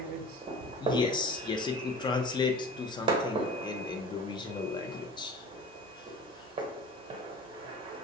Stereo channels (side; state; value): both; normal; correlation 0.40